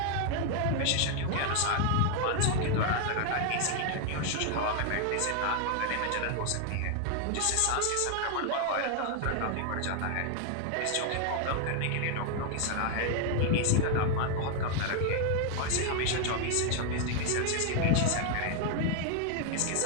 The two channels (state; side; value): different; both; correlation 0.00